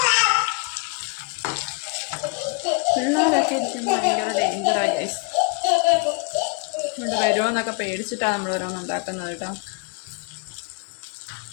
പിള്ളേരൊക്കെ ഇരിക്കുമ്പോൾ ഭയങ്കര ഡേഞ്ചറായി ഗൈസ്. ഇവിടെ വരുമോന്നൊക്കെ പേടിച്ചിട്ടാണ് നമ്മൾ ഓരോന്ന് ഉണ്ടാക്കുന്നത് കേട്ടോ.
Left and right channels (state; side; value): quieter; right; 32.8 dB